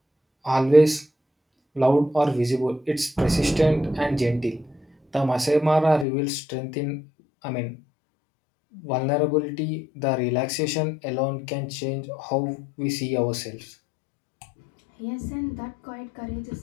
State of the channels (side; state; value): right; drops out; at 6.1 s